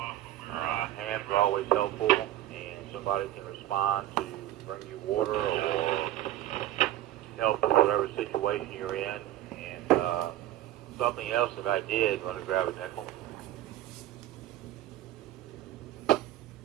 hams are always helpful, and somebody can respond to bring you water or help with whatever situation you're in. And something else that I did, want to grab a nickel.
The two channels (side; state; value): left; quieter; 14.0 dB